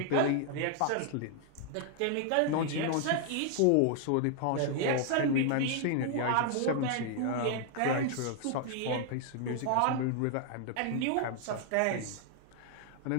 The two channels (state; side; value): different; both; correlation 0.00